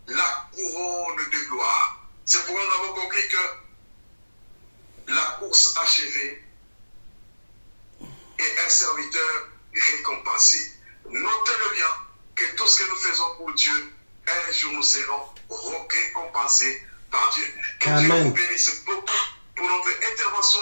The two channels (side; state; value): both; inverted; correlation -1.00